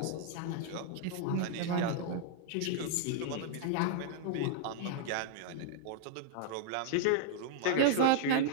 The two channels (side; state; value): both; different; correlation -0.01